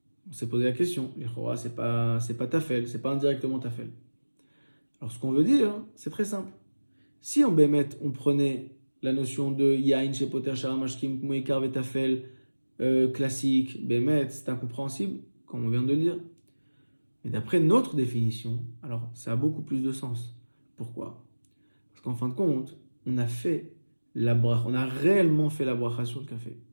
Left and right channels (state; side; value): inverted; both; correlation -1.00